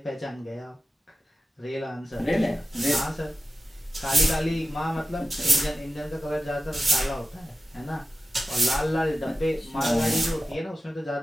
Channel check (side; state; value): both; normal; correlation 0.95